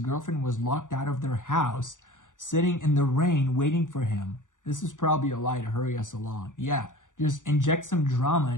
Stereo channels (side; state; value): right; late; 0.87 ms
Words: was locked out of their house, sitting in the rain, waiting for him. This is probably a lie to hurry us along. Yeah, just inject some drama